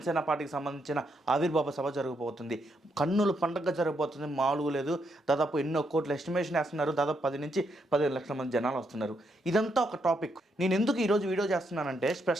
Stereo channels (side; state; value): both; normal; correlation 0.78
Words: పార్టీకి సంబంధించిన ఆవిర్భావ సభ జరగబోతుంది. కన్నుల పండుగ జరగబోతుంది, మామూలుగా లేదు. దాదాపు ఎన్నో కోట్ల ఎస్టిమేషన్ వేస్తున్నారు. దాదాపు 10 నుంచి 15 లక్షల మంది జనాలు వస్తున్నారు. ఇదంతా ఒక టాపిక్. నేను ఎందుకు ఈరోజు వీడియో చేస్తున్నానంటే